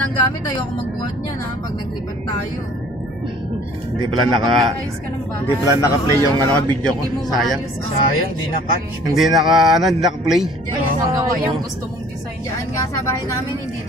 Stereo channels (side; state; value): both; normal; correlation 0.53